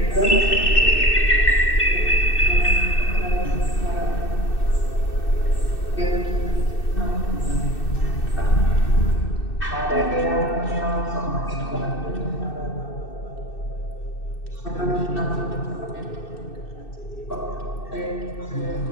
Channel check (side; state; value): right; late; 2.6 ms